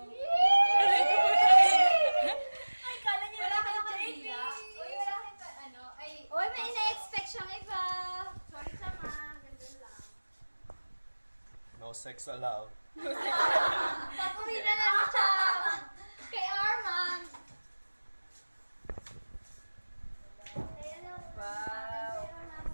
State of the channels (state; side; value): inverted; both; correlation -1.00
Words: Ay, kala niyo Wala na kayong JP. kandila? Uy, wala kayong ano? Ay, Uy, may ina-expect siyang iba. sorry sama. Ganun lang. No sex allowed. Pag-uwi na lang siya. Kay Armand. Wow. Pero naman,